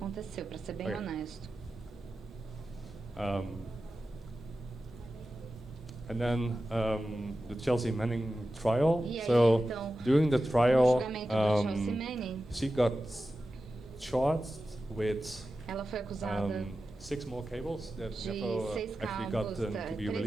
para ser bem honesto. And then the Chelsea Manning trial. E aí, so então, during the trial, she got charged with ela foi acusada 6 more cables that de never 6 actually cabos, got to be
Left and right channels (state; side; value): normal; both; correlation 0.93